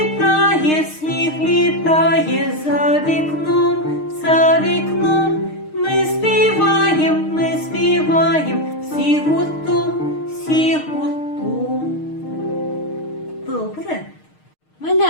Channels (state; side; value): late; right; 6.5 ms